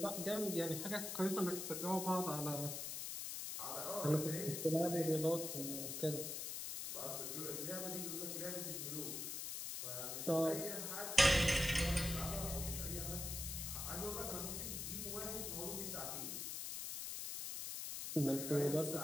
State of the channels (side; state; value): left; noise; hiss, 4 dB below the sound